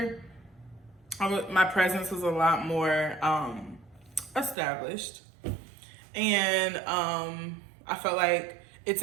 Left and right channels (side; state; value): left; drops out; at 4.5 s